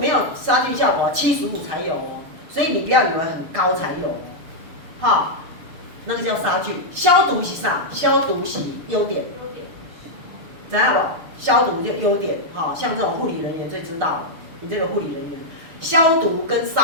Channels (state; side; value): late; left; 6.8 ms